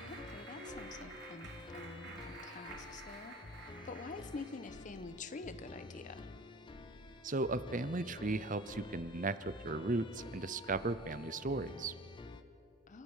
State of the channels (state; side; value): normal; both; correlation 0.43